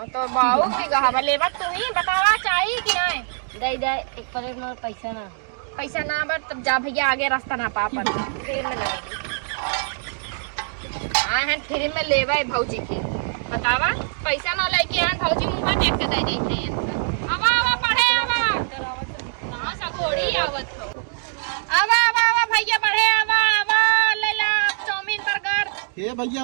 तो बाऊ बीघा हवा लेबा तू ही बतावा चाहिए कि नहीं। दे दे 1 प्लेट में पैसा ना। पैसा ना बर तब जा भैया आगे रास्ता ना पा पर फ्री में ना। हाँ है फ्री में लेबा भौजी के बतावा पैसा ना लेके आन भौजी मुंह देख के दे देते हैं। आवा पढ़े आवा कहां सा घोड़ी आवत हो। आवा भैया पढ़े आवा ले ला चाउमीन बर्गर। हे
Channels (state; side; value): silent; left; digital silence